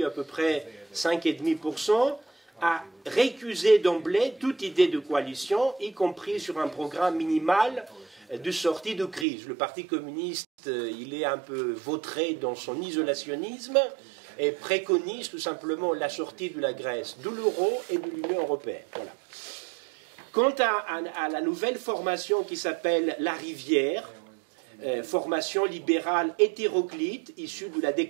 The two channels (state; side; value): drops out; left; at 9.2 s